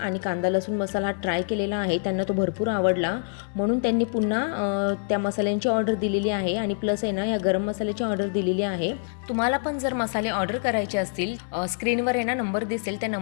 कांदा लसूण मसाला ट्राय केलेला आहे. त्यांना तो भरपूर आवडला, म्हणून त्यांनी पुन्हा त्या मसाल्यांची ऑर्डर दिलेली आहे. आणि प्लस आहे ना या गरम मसाल्याची ऑर्डर दिलेली आहे. तुम्हाला पण जर मसाले ऑर्डर करायचे असतील स्क्रीनवर आहे ना नंबर दिसेल, त्या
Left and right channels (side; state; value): right; silent; 61 dB below the other